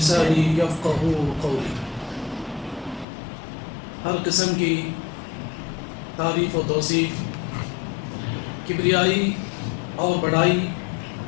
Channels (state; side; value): drops out; right; at 3.1 s